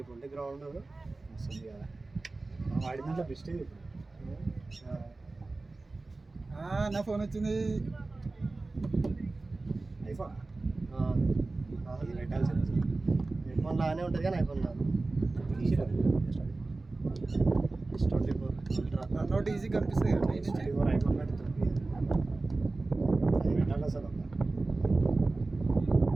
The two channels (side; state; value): left; quieter; 3.3 dB